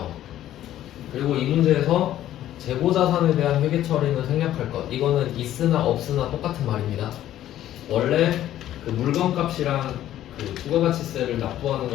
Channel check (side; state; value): right; quieter; 12.6 dB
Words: 그리고 이 문제에서 재고자산에 대한 회계 처리는 생략할 것. 이거는 있으나 없으나 똑같은 말입니다. 원래 물건값이랑 부가가치세를 납부하는